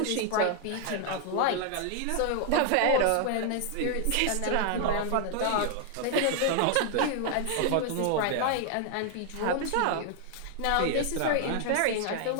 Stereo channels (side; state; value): both; different; correlation 0.00